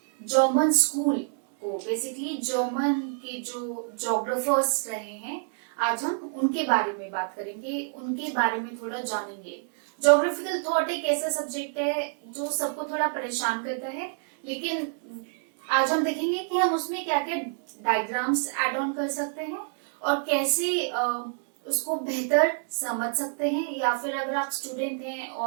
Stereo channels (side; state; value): left; silent; digital silence